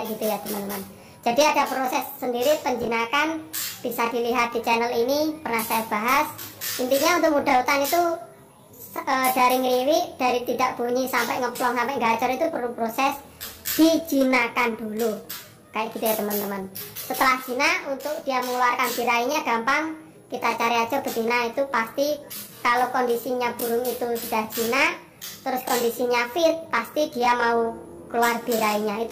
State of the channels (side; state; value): both; identical; correlation 1.00